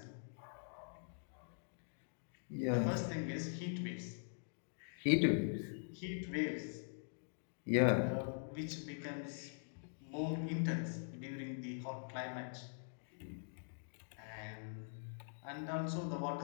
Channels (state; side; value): silent; right; digital silence